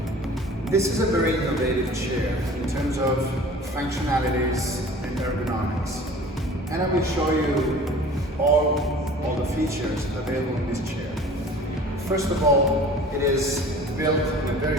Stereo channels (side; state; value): both; normal; correlation 0.44